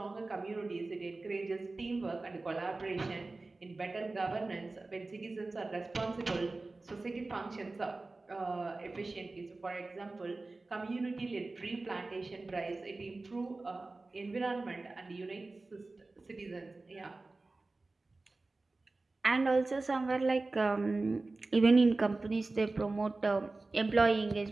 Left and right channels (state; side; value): quieter; left; 3.3 dB